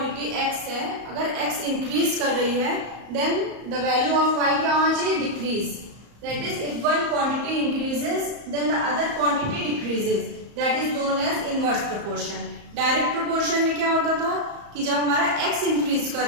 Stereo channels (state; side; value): late; left; 34 ms